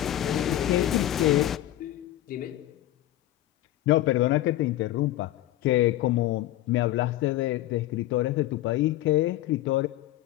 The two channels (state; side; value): quieter; right; 14.7 dB